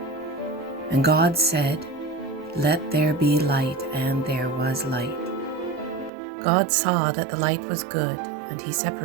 And God said, "Let there be light," and there was light. God saw that the light was good, and he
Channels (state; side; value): drops out; left; at 6.1 s